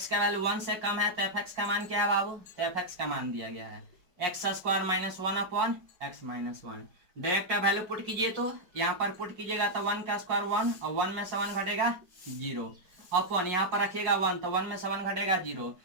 का वैल्यू वन से कम है तो एफ एक्स का मान क्या है बाबू, तो एफ एक्स का मान दिया गया है x square minus one upon x minus one. Direct value put कीजिए, तो यहाँ पर पुट कीजिएगा तो वन का स्क्वायर वन, और वन में से वन घटेगा जीरो, अपॉन यहाँ पर रखिएगा वन, तो वन में से वन घटेगा जीरो,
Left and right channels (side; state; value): left; late; 5.5 ms